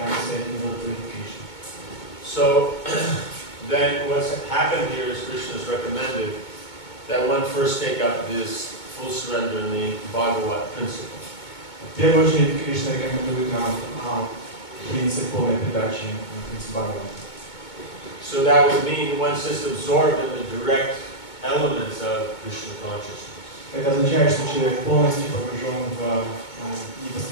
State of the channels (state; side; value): late; right; 2.2 ms